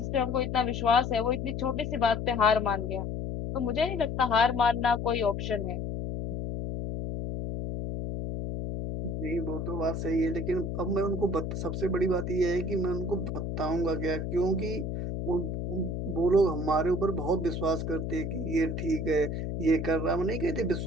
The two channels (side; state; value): left; noise; hum, 3 dB below the sound